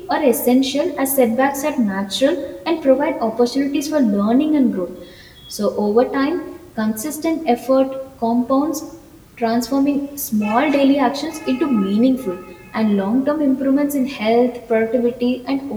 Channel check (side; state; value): both; identical; correlation 1.00